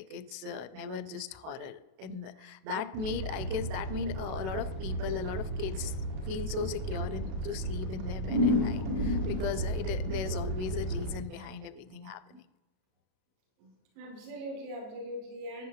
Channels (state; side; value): late; left; 32 ms